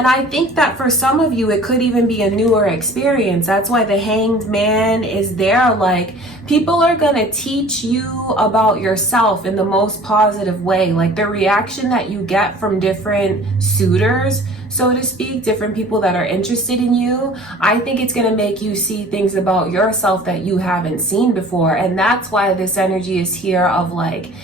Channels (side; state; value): both; normal; correlation 0.47